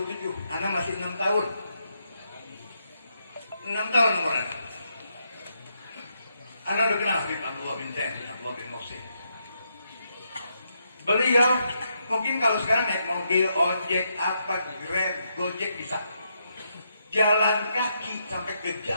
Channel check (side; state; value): both; inverted; correlation -0.79